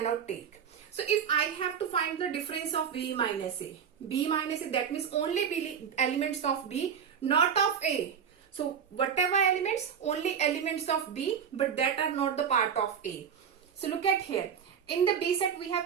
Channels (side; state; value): left; quieter; 7.6 dB